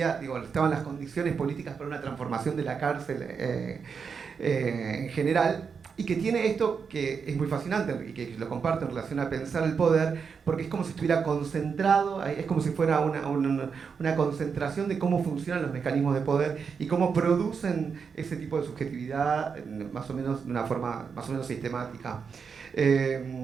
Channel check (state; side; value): quieter; left; 6.0 dB